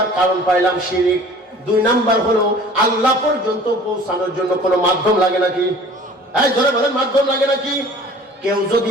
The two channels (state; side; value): normal; both; correlation 0.47